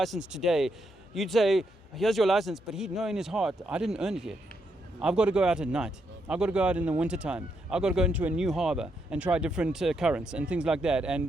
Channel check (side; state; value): both; normal; correlation 0.79